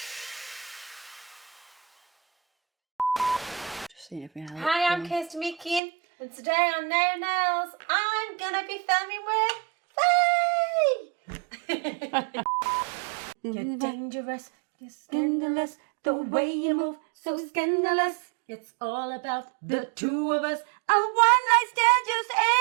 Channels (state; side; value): drops out; left; at 5.8 s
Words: Just seeing if we have Hi, I'm Kirsty Meekin, and today on Naio Nails, I'm gonna be filming with Faye! You're dangerous, you're scandalous, the way you move, so scandalous. It's all about the two of us. A one night stand just